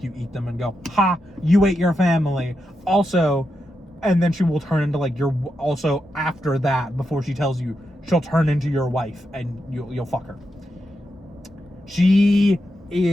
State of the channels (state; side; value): normal; both; correlation 0.86